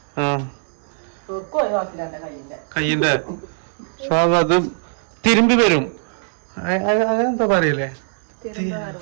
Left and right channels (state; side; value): silent; left; 65 dB below the other